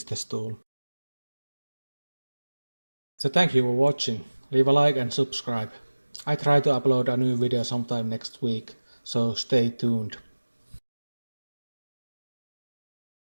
the stool. So thank you for watching. Leave a like and subscribe. I try to upload a new video sometime next week, so stay tuned.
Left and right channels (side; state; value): both; inverted; correlation -1.00